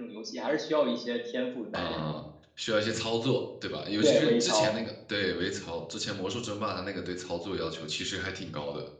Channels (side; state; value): both; identical; correlation 1.00